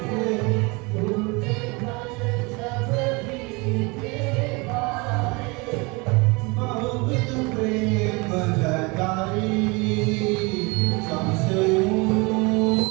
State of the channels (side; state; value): left; quieter; 27.4 dB